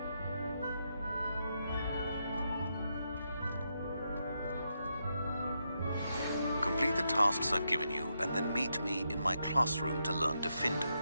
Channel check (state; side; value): inverted; both; correlation -0.82